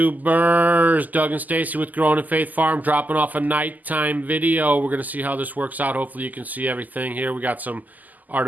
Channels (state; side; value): late; left; 0.082 ms